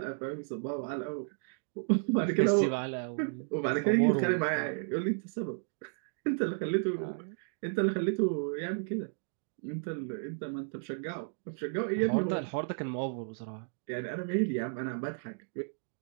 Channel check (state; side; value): silent; left; 56 dB below the other